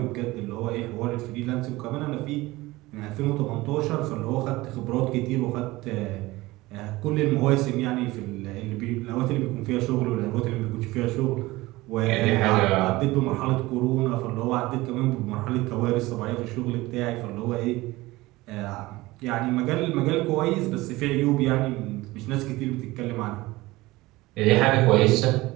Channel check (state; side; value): quieter; left; 19.7 dB